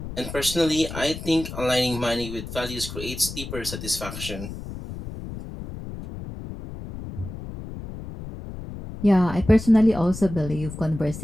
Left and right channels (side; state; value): left; noise; rumble, 10 dB below the sound